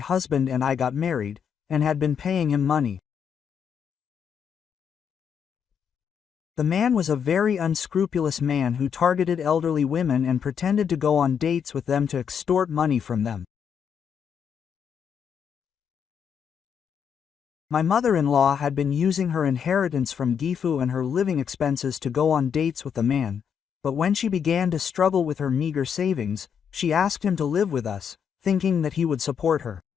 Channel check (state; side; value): quieter; right; 7.6 dB